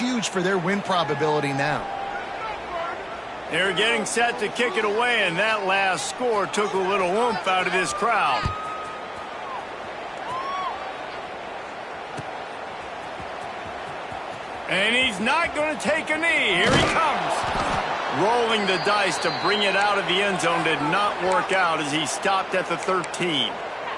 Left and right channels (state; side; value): identical; both; correlation 1.00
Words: for their win probability now. They're getting set to kick it away, and that last score took a little oomph out of this crowd. And he's not going to take a knee. Here he comes. Rolling the dice to bring it out of the end zone did not work out as he stopped at the 13.